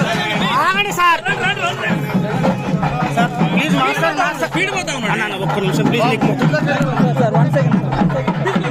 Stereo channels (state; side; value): identical; both; correlation 1.00